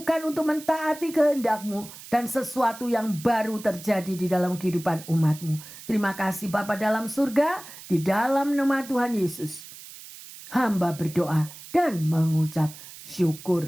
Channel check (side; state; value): right; noise; hiss, 16 dB below the sound